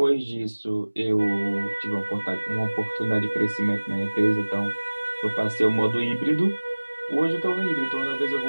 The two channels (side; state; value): both; inverted; correlation -1.00